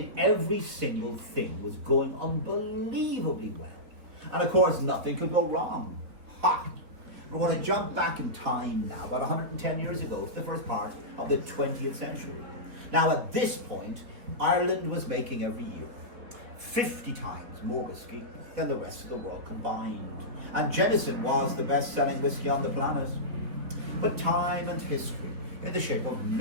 every single thing was going unbelievably well. And of course, nothing could go wrong. Ha! We're going to jump back in time now, about 110 years ago, to the first part of the 20th century. Now, at this point, Ireland was making every year 50 times more whiskey than the rest of the world combined. And Jameson was the best-selling whiskey on the planet. But time and history, in the shape of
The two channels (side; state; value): left; late; 3.9 ms